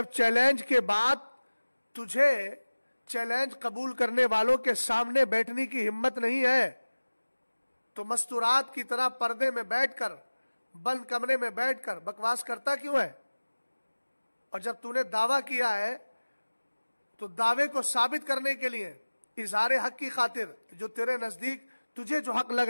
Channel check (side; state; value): both; inverted; correlation -1.00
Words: چیلنج کے بعد تجھے چیلنج قبول کرنے والوں کے سامنے بیٹھنے کی ہمت نہیں ہے, تو مستورات کی طرح پردے میں بیٹھ کر, بند کمرے میں بیٹھ کر بکواس کرتا کیوں ہے؟ اور جب تو نے دعویٰ کیا ہے تو دعوے کو ثابت کرنے کے لیے, اظہار حق کی خاطر, جو تیرے نزدیک تجھے جو حق لگ